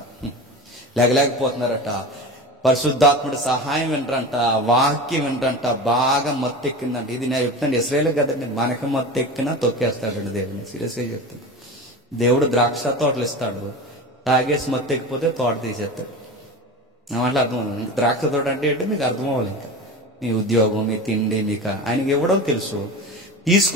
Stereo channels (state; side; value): normal; both; correlation 0.29